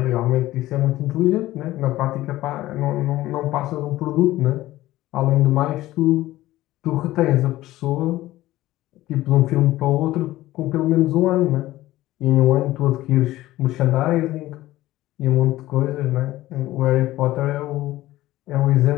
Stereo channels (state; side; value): quieter; right; 16.1 dB